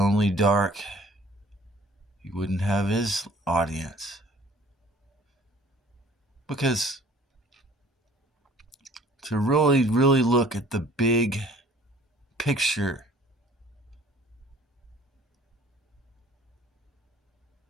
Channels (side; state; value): both; normal; correlation 0.52